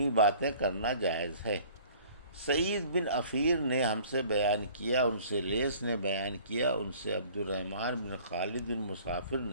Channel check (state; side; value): inverted; both; correlation -0.51